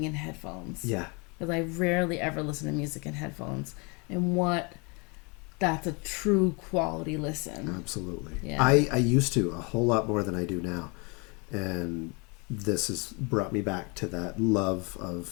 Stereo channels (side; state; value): right; quieter; 30.9 dB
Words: in headphones. Yeah. Because I rarely ever listen to music in headphones, and that's a true quality listen. Absolutely. Yeah. I used to a whole lot more than I do now. And this has brought me back to that love